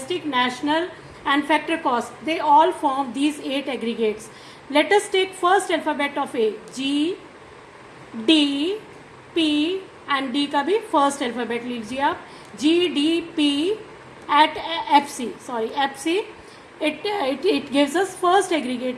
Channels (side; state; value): both; identical; correlation 1.00